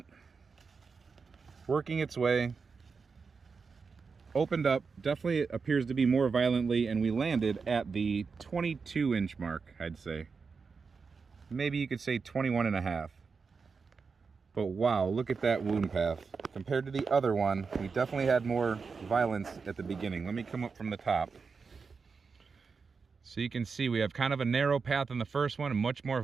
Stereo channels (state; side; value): quieter; left; 5.1 dB